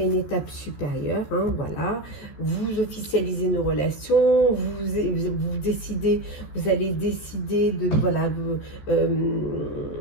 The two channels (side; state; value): right; late; 14 ms